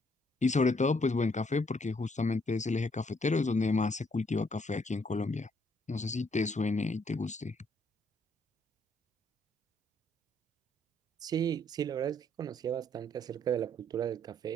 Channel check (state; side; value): normal; both; correlation 0.69